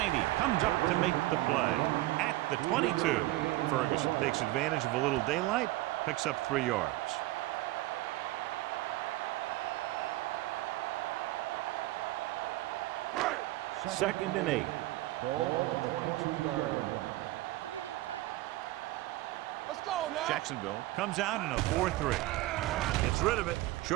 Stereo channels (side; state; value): left; quieter; 17.9 dB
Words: comes up to make the play at the 22. Ferguson takes advantage of a little daylight, picks up 3 yards. Second and 8. Ball on the 22-yard line. So we gonna take it. Let's go now. Jacksonville comes out in a 4-3. Gets rid of it.